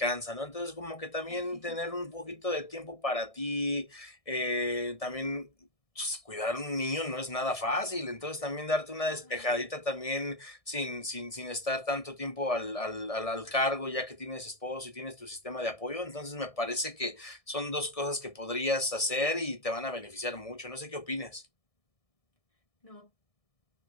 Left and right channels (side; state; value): right; late; 1.6 ms